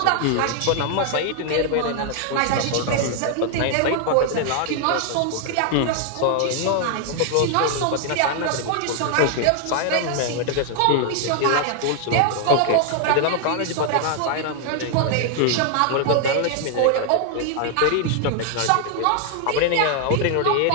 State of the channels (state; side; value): different; both; correlation 0.00